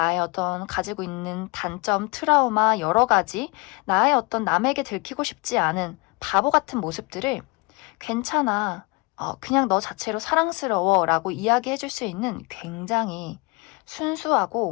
어떤 가지고 있는 단점, 트라우마 여러 가지 나의 어떤 남에게 들키고 싶지 않은 바보 같은 모습들을 괜찮아. 그냥 너 자체로 사랑스러워 라고 이야기해 줄 수 있는 굉장히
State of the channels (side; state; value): right; quieter; 27.6 dB